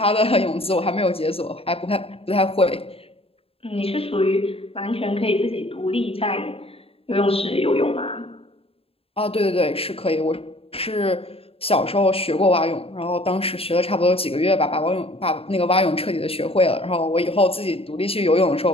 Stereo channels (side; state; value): right; late; 0.28 ms